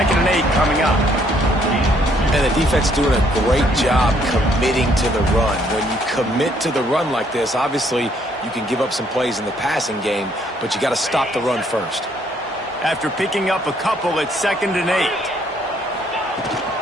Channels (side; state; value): both; normal; correlation 0.67